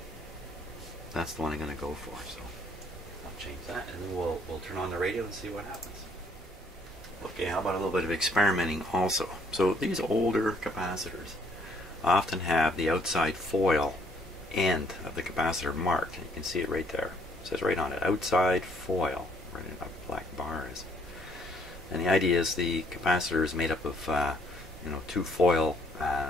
that's the one I'm going to go for. So I'll change that, and then we'll turn on the radio and see what happens. Okay, how about a little bit of experimenting also? So these older capacitors often have the outside foil end of the capacitor marked. You can see it right there. It says right on it, outside foil, right in a black bar is. And the idea is the capacitor is made up of 2 foil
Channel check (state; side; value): normal; both; correlation 0.65